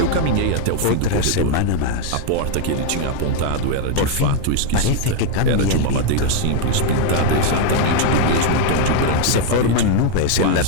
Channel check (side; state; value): both; different; correlation 0.00